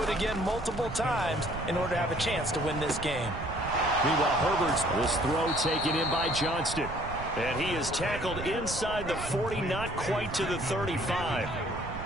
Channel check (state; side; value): noise; right; rumble, 9 dB below the sound